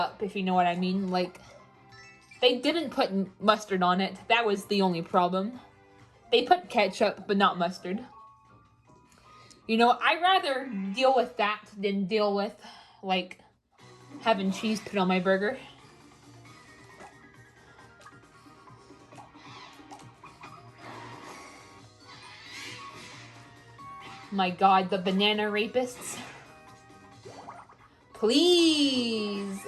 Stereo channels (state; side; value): identical; both; correlation 1.00